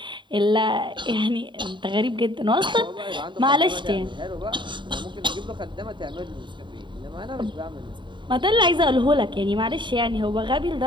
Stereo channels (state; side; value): late; left; 0.23 ms